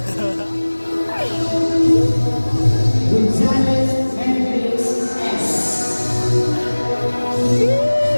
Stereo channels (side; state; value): both; inverted; correlation -1.00